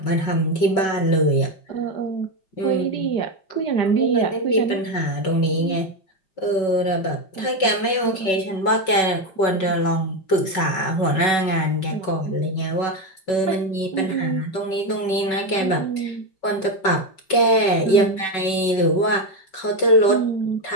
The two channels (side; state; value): right; late; 5.3 ms